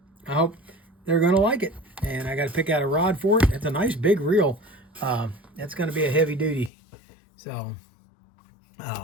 hope they're going to like it. And I got to pick out a rod for it. It's a nice big reel. That's going to be a heavy duty. So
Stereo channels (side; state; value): right; drops out; at 6.7 s